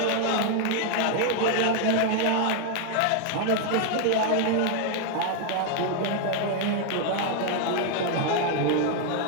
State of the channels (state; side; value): different; both; correlation 0.00